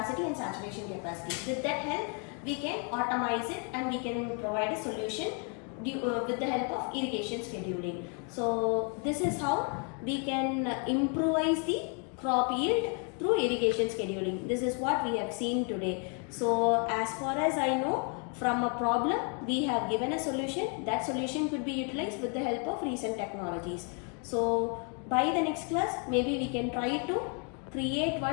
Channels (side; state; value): right; quieter; 38.5 dB